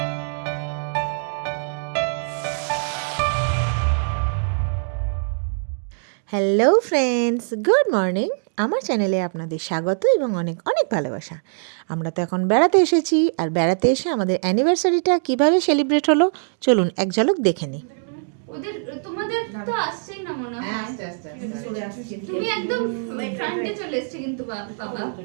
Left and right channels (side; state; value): left; silent; digital silence